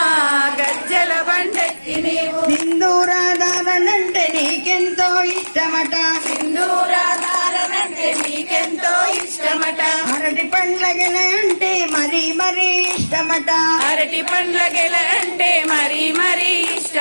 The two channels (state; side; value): inverted; both; correlation -1.00